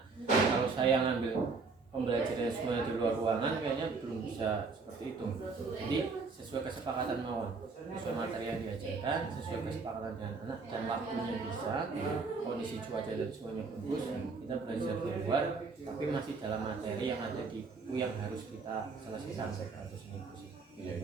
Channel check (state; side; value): quieter; left; 4.4 dB